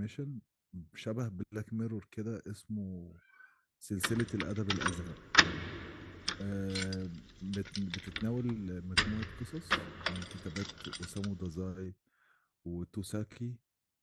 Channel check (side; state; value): both; identical; correlation 1.00